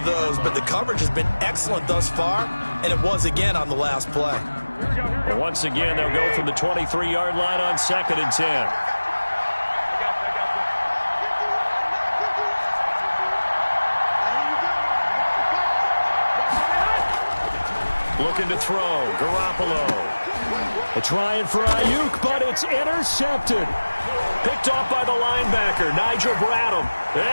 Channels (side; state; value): both; inverted; correlation -1.00